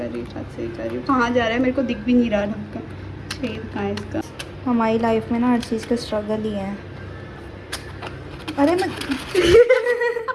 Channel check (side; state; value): both; identical; correlation 1.00